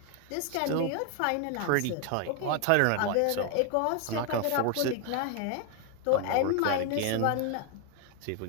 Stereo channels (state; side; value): different; both; correlation 0.01